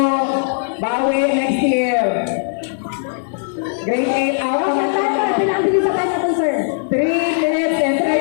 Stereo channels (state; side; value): silent; right; 67 dB below the other